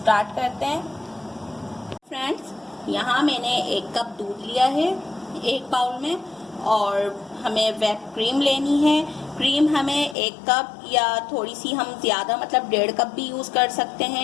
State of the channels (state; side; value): drops out; right; at 10.2 s